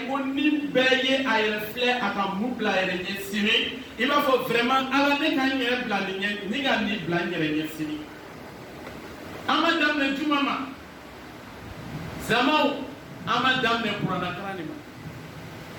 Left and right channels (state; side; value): identical; both; correlation 1.00